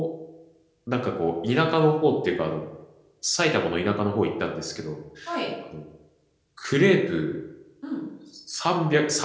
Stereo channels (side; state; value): both; identical; correlation 1.00